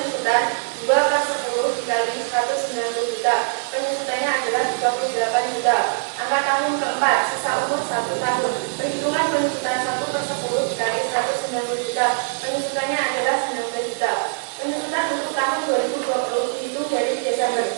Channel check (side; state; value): left; silent; 62 dB below the other